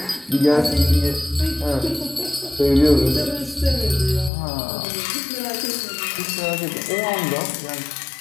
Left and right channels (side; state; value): right; drops out; at 4.3 s